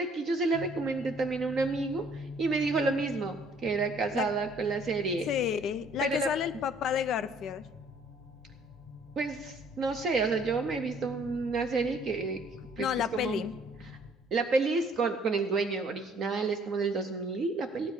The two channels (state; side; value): normal; both; correlation 0.59